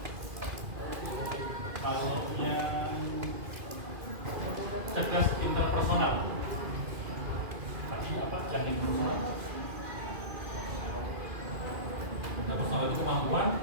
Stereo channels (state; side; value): late; left; 2.4 ms